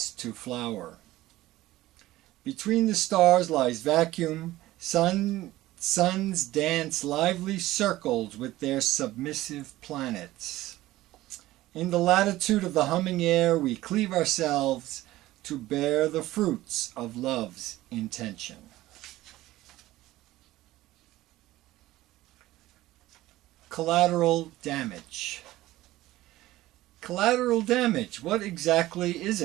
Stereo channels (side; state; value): left; quieter; 16.5 dB